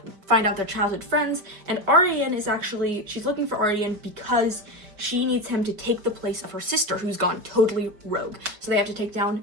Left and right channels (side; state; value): left; late; 5.1 ms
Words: find out their childhood friends. And Arian is actually, she's looking for Arian because she needs him to take the place of her sister, who's gone totally rogue. So they have to take down